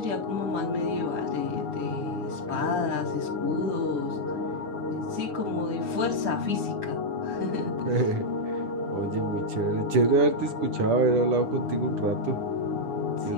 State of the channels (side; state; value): left; late; 10 ms